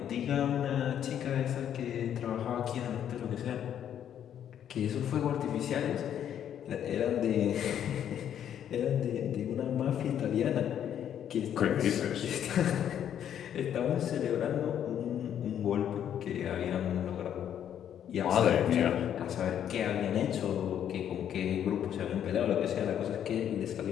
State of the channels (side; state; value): right; quieter; 9.7 dB